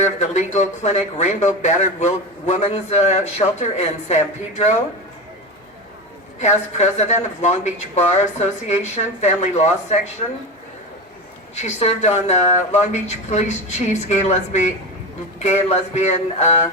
of the legal clinic Rainbow Battered Women's Shelter in San Pedro. Past president of Long Beach Bar Association Family Law Section. She served on the Long Beach Police Chief's Gay and Lesbian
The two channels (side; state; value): both; normal; correlation 0.23